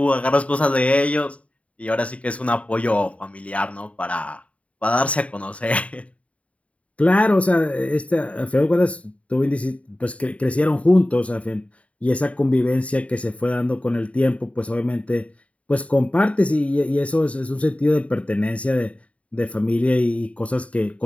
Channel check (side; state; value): right; late; 0.065 ms